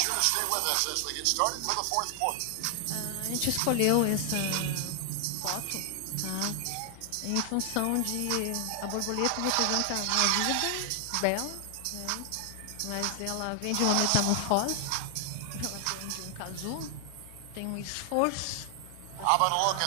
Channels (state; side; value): different; both; correlation 0.00